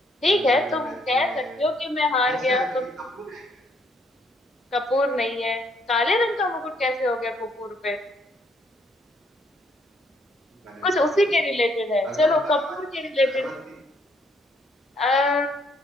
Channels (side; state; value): both; normal; correlation 0.69